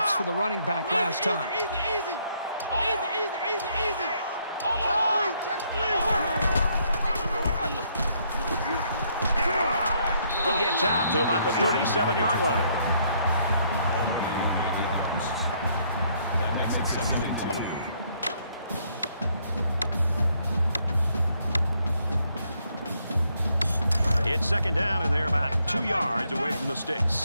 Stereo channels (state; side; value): inverted; both; correlation -0.70